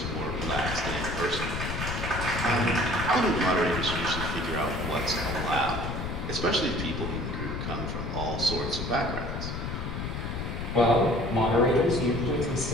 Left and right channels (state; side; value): noise; left; rumble, 4 dB below the sound